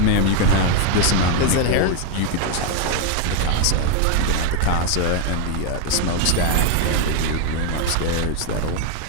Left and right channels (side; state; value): both; different; correlation 0.01